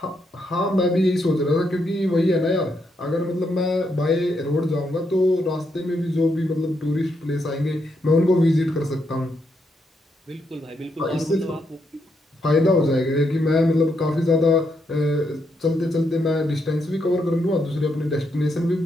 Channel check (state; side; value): normal; both; correlation 0.79